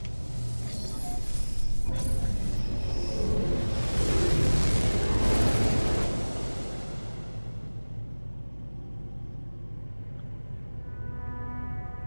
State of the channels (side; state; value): both; inverted; correlation -1.00